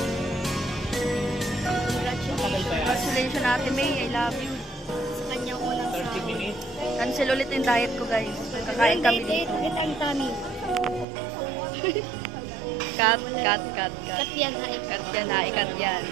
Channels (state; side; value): drops out; left; at 11.1 s